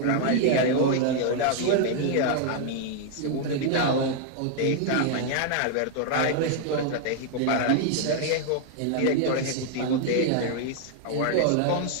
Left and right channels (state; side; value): different; both; correlation 0.00